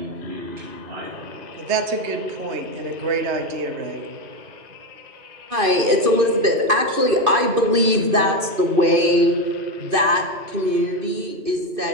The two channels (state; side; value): late; left; 2.5 ms